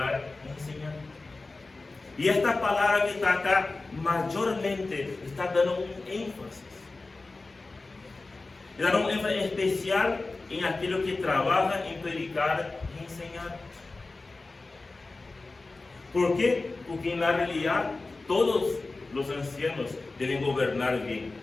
y enseñar. Y esta palabra que está acá, mayormente, está dando un énfasis. Está dando un énfasis especial en aquellos que trabajan en predicar y enseñar. ¿Por qué? Porque en la realidad todos los ancianos deben gobernar bien.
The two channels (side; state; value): right; quieter; 3.4 dB